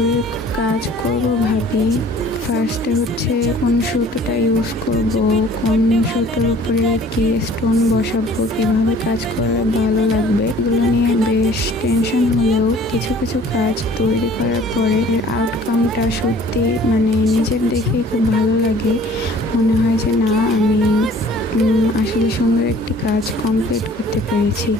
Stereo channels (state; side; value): normal; both; correlation 0.52